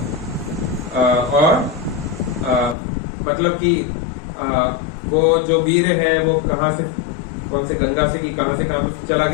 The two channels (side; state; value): right; drops out; at 2.8 s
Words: और मतलब कि वो जो वीर है वो कहाँ से, कौन से गंगा से कि कहाँ से चला